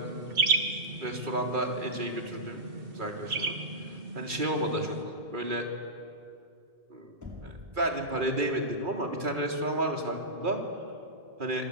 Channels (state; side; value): late; left; 2.4 ms